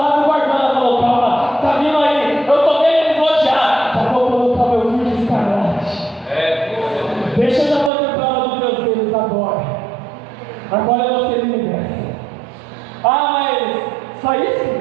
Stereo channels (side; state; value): left; drops out; at 7.9 s